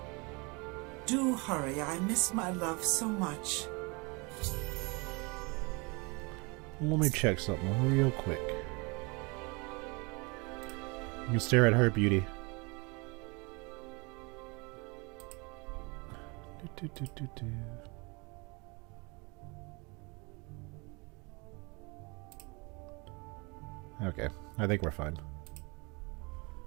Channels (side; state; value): left; quieter; 28.8 dB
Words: Do hurry. I miss my love so much. Let me check something real quick. You can stare at her beauty. Okay, I think we're fine.